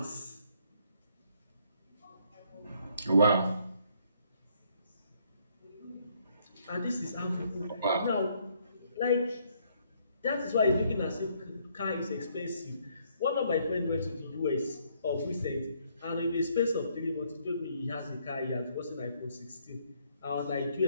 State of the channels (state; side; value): inverted; both; correlation -0.68